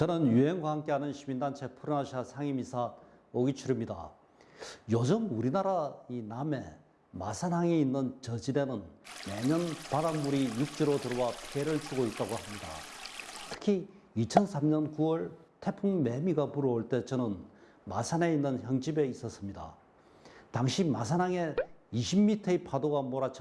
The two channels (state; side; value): identical; both; correlation 1.00